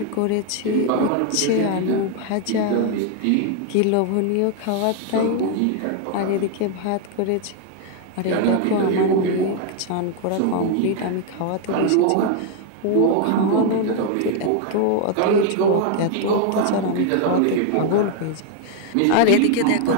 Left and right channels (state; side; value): different; both; correlation 0.00